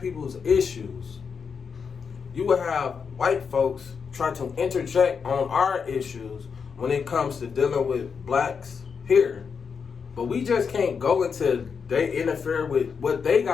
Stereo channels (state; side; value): quieter; right; 6.0 dB